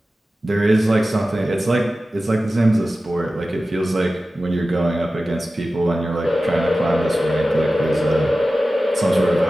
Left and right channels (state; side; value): normal; both; correlation 0.95